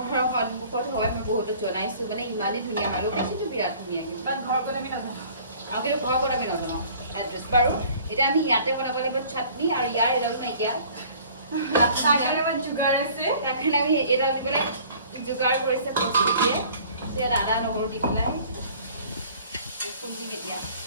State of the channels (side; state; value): both; inverted; correlation -0.51